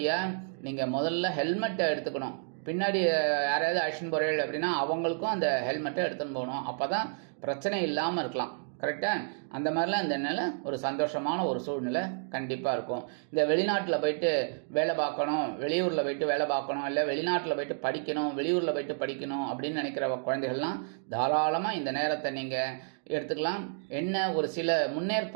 நீங்கள் முதல்ல ஹெல்மெட்டை எடுத்துக்கணும். பின்னாடி யாராவது அழிச்சுன்னு போகிறீர்கள் அப்படின்னா அவங்களுக்கும் அந்த ஹெல்மெட்டை எடுத்துன்னு போகணும். அப்போ தான் பிரச்சனை இல்லாமல் இருக்கலாம். கரெக்டாக அந்த மாதிரிலாம் இந்த நிலை ஒரு சந்தோஷமான ஒரு சூழ்நிலை கண்டிப்பாக இருக்கும். இந்த வெளிநாட்டில் போயிட்டு வேலை பார்க்கணும், வெளியூரில் போயிட்டு வேலை பார்க்கணும், இல்லை வெளிநாட்டில் போயிட்டு படிக்கணும், வெளியூரில் போயிட்டு படிக்கணும் அப்படின்னு நினைக்கிற குழந்தைகள்லாம் தாராளமாக இந்த நேரத்தை நீங்கள் எடுத்துக்கலாம். என்ன ஒரு சில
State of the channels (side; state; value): left; silent; digital silence